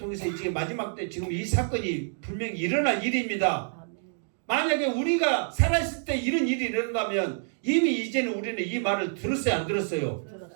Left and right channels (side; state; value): left; silent; digital silence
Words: 이제 마지막 때 지금 이 사건이 분명히 일어날 일입니다. 만약에 우리가 살아있을 때 이런 일이 일어난다면 이미 이제는 우리는 이 말을 들었어요, 안 들었어요?